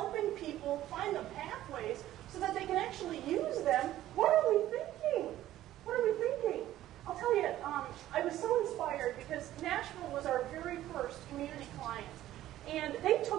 people find the pathways so that they can actually use them, what are we thinking? What are we thinking? I'll tell you, I was so inspired because Nashville was our very first community client. And they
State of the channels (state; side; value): quieter; left; 13.8 dB